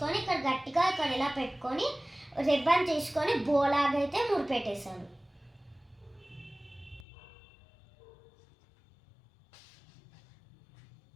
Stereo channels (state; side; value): drops out; right; at 7.1 s